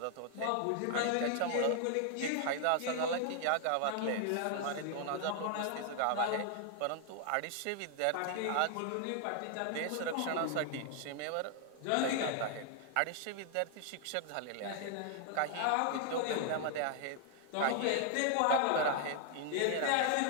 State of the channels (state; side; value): different; both; correlation 0.00